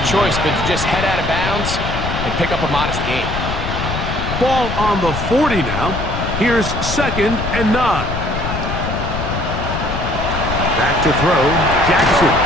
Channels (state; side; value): noise; left; rumble, 4 dB below the sound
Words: choice but to just head out of bounds and pick up a modest gain. Ball on the 40 now. Here's 2nd and 9. Back to throw, Jackson.